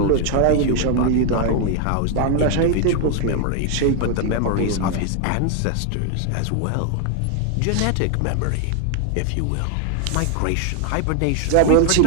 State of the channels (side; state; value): both; different; correlation 0.00